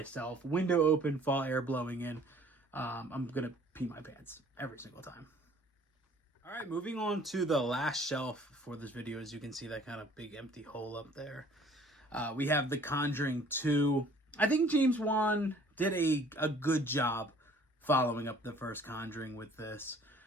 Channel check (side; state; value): both; normal; correlation 0.54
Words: window open, fall air blowing in, I'm going to pee my pants every single time. All right, moving on to the last shelf for this video. As you can see, that kind of big empty hole up there. We have The Conjuring 2. I think James Wan did a good job following up the first Conjuring with this.